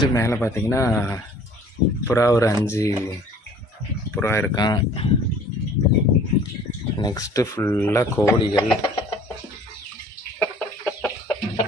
மேலே பார்த்திங்கன்னா புறா ஒரு 5 புறா இருக்கான். நெக்ஸ்ட்டு ஃபுல்லாக கோழிகள்.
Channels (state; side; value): normal; both; correlation 0.52